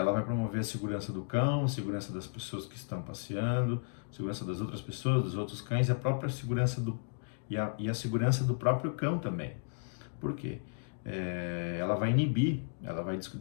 vai promover a segurança do cão, a segurança das pessoas que estão passeando, a segurança das outras pessoas, dos outros cães e a própria segurança e a segurança do próprio cão também. Por quê? Ela vai inibir, ela vai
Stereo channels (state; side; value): silent; right; digital silence